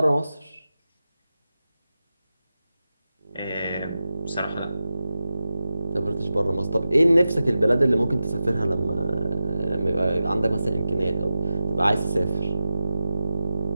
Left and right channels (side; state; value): both; inverted; correlation -0.93